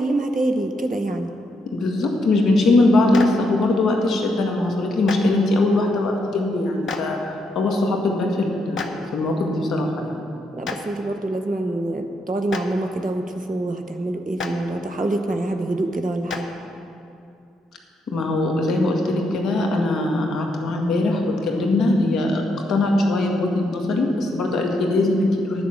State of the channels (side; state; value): both; normal; correlation 0.79